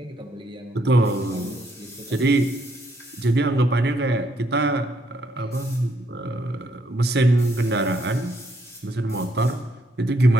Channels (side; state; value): both; normal; correlation 0.72